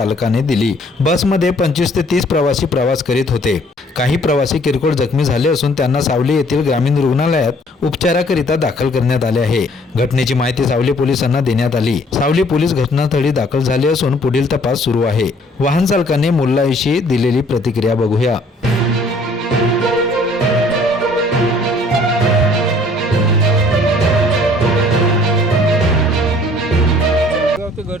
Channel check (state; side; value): normal; both; correlation 0.58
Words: दिली। बसमध्ये 25 ते 30 प्रवासी प्रवास करीत होते। काही प्रवासी किरकोळ जखमी झाले असून त्यांना सावली येथील ग्रामीण रुग्णालयात उपचाराकरिता दाखल करण्यात आले आहे। घटनेची माहिती सावली पोलिसांना देण्यात आली। सावली पोलीस घटनास्थळी दाखल झाले असून पुढील तपास सुरू आहे। वाहन चालकाने मुल्लाविषयी दिलेली प्रतिक्रिया बघूया। ते